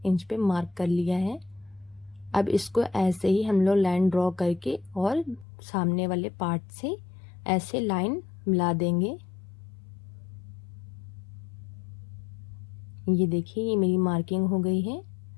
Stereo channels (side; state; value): right; drops out; at 5.5 s